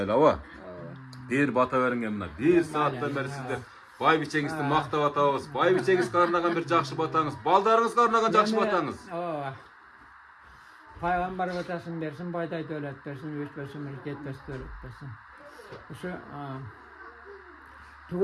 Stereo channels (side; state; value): both; identical; correlation 1.00